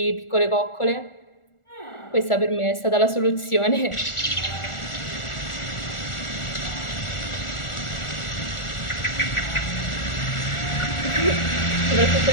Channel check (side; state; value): right; late; 1.4 ms